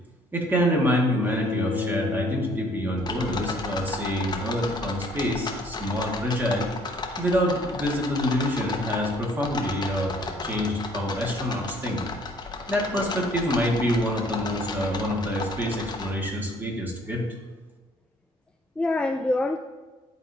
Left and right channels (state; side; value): normal; both; correlation 0.60